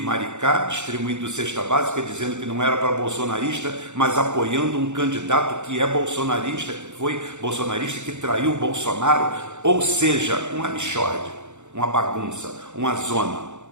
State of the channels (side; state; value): left; late; 0.84 ms